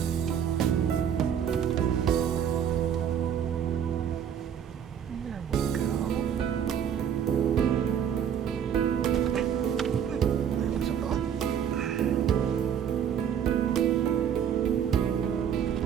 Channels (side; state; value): left; quieter; 8.6 dB